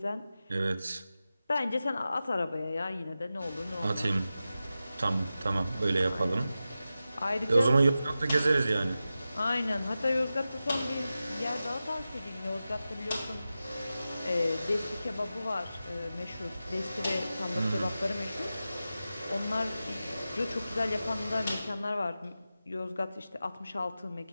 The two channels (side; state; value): both; inverted; correlation -0.93